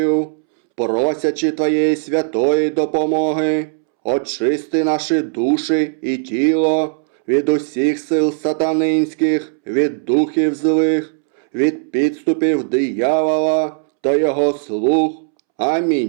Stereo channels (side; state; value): left; silent; 68 dB below the other